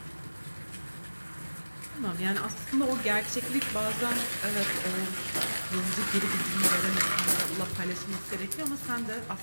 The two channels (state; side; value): inverted; both; correlation -1.00